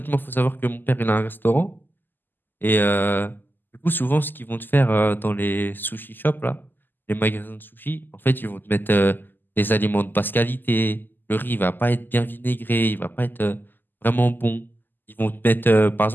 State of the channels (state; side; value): late; right; 0.091 ms